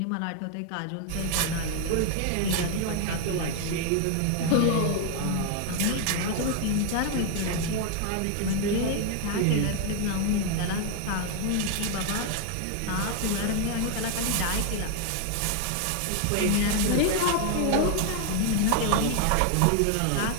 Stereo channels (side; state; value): both; different; correlation 0.00